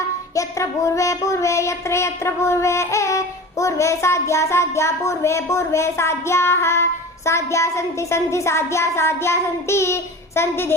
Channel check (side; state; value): both; normal; correlation 0.35